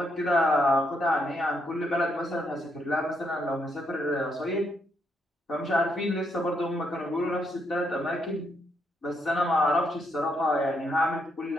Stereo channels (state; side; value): normal; both; correlation 0.77